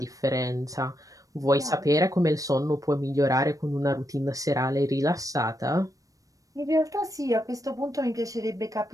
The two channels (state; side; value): late; left; 0.16 ms